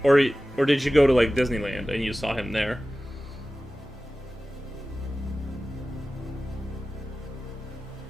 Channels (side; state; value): both; normal; correlation 0.96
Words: or did you go to like Disneyland and you saw him there?